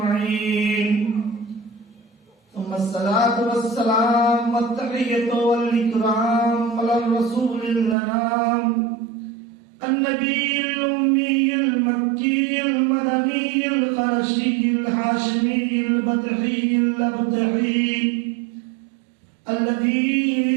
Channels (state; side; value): drops out; left; at 8.0 s